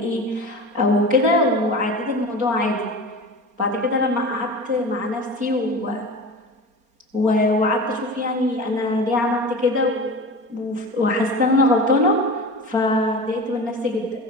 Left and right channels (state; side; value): late; left; 4.3 ms